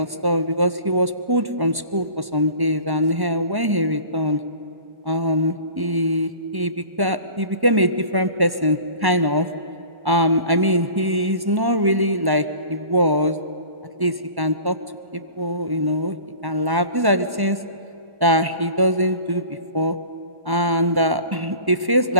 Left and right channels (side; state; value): left; late; 1.1 ms